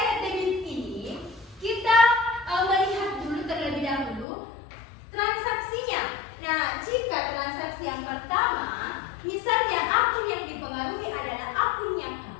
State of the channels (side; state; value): right; drops out; at 4.2 s